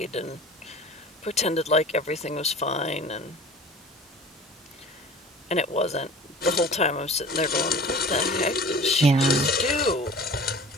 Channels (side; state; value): both; normal; correlation 0.42